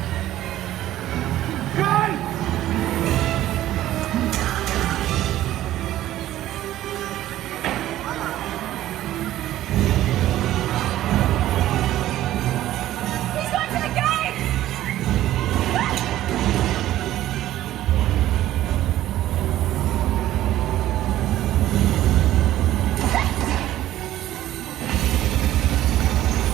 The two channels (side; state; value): left; quieter; 13.8 dB